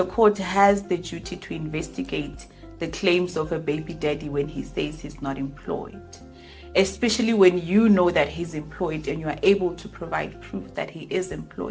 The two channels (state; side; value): identical; both; correlation 1.00